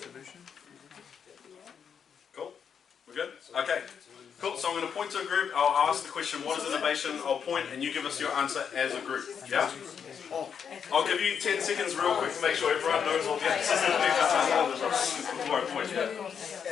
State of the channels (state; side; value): quieter; right; 7.2 dB